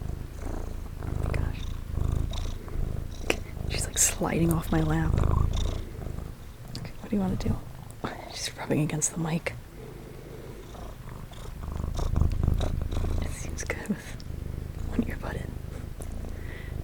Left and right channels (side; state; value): both; identical; correlation 1.00